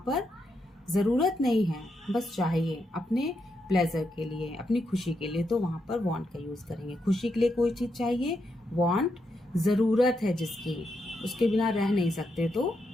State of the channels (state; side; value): normal; both; correlation 0.82